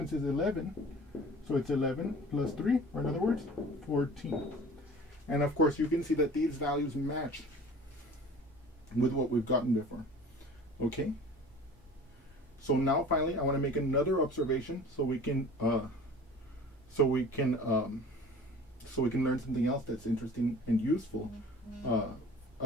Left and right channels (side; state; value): both; normal; correlation 0.43